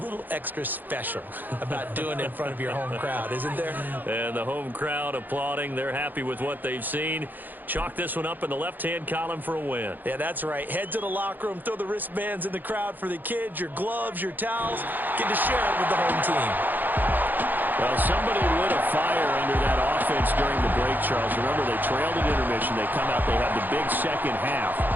little extra special about doing it in front of your home crowd, isn't there? And the home crowd applauding. They're happy with what they've seen. Chalk this one up in the left-hand column for a win. Yeah, that's right. Head to the locker room, throw the wristbands in the crowd for the kids, your gloves, your towels. Get to share it with the home team. Well, somebody lit a fire under that offense during the break, Charles. Remember, they trailed at intermission. They come out, they have the big second half,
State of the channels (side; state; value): left; late; 0.087 ms